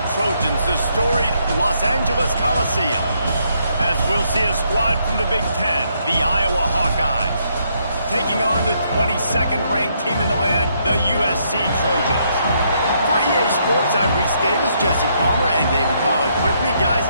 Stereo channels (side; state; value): both; inverted; correlation -0.73